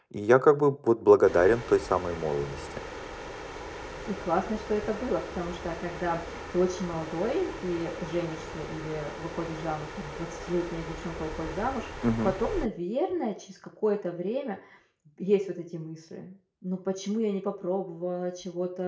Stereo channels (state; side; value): identical; both; correlation 1.00